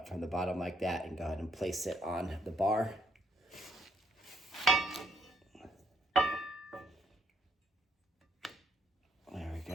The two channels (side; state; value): both; normal; correlation 0.72